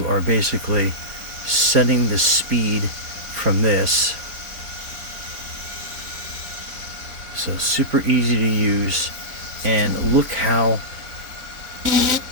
are basically setting the speed from this. So super easy to use, and look how, let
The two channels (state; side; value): late; left; 3.9 ms